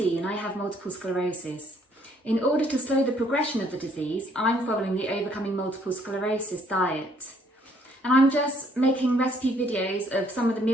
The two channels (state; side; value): normal; both; correlation 0.65